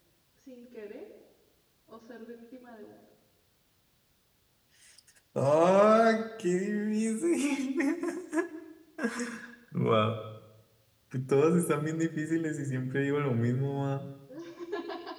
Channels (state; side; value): identical; both; correlation 1.00